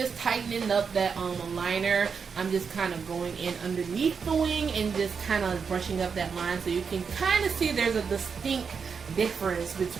tightening up that liner. I'm just kind of going in underneath the wing and just kind of brushing up that line so you can kind of see there's a distinct difference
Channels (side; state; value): left; quieter; 6.0 dB